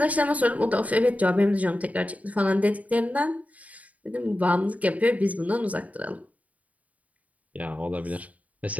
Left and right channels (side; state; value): left; late; 0.071 ms